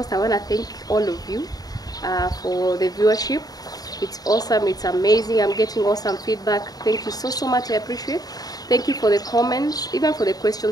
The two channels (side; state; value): right; late; 0.18 ms